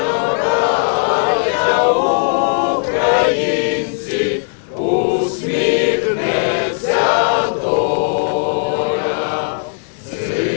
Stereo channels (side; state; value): right; silent; digital silence